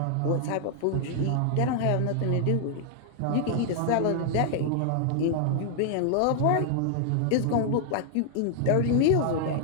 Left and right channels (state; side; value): different; both; correlation 0.00